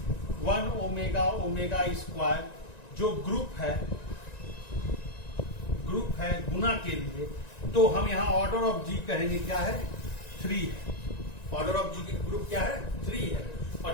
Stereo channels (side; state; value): right; late; 1.9 ms